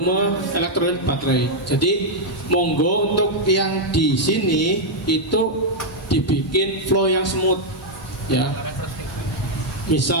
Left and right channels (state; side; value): normal; both; correlation -0.02